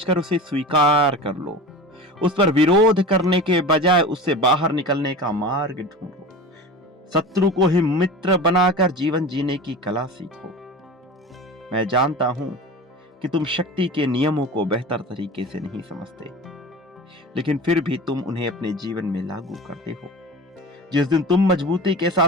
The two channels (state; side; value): normal; both; correlation 0.33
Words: उसे स्वीकार कर लो। उस पर विरोध करने के बजाय उससे बाहर निकलने का मार्ग ढूंढो। शत्रु को ही मित्र बनाकर जीवन जीने की कला सीखो। मैं जानता हूं कि तुम शक्ति के नियमों को बेहतर तरीके से नहीं समझते, लेकिन फिर भी तुम उन्हें अपने जीवन में लागू करते हो। जिस दिन तुम मजबूती के